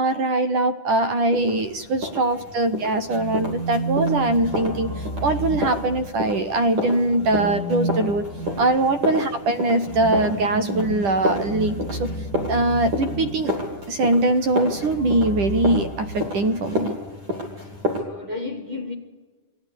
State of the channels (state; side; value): late; left; 10 ms